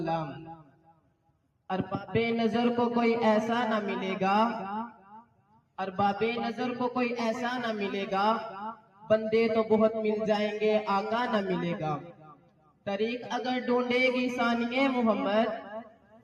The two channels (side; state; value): both; identical; correlation 1.00